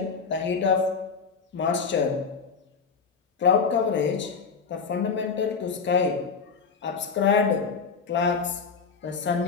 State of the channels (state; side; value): quieter; right; 5.5 dB